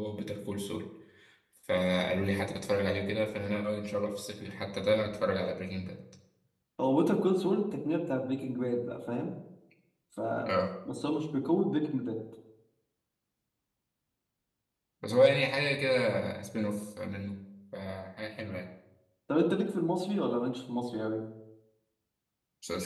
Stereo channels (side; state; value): both; identical; correlation 1.00